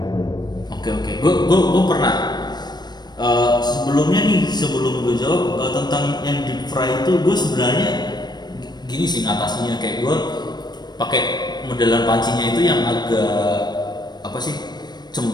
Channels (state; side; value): late; right; 0.20 ms